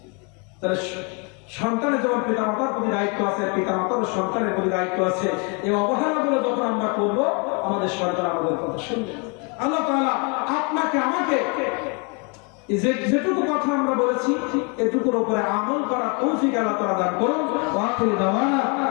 তাহলে সন্তানের যেমন পিতামাতার প্রতি দায়িত্ব আছে, পিতামাতার সন্তানের প্রতি দায়িত্ব আছে। এই অবহেলাগুলো যখন আমরা করবো, আমাদের সন্তান আমাদের কথা শুনবে। আল্লাহ তাআলা আপনাকে আমাকে যেটুকু কথা আমরা বলেছি, এটুকুর উপরে আমল করা তৌফিক আল্লাহ তাআলা দান করুন। ওয়া আখিরু দাওয়ানা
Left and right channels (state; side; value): quieter; right; 33.8 dB